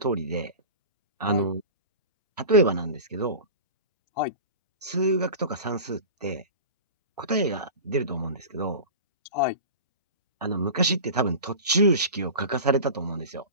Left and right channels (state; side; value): inverted; both; correlation -0.32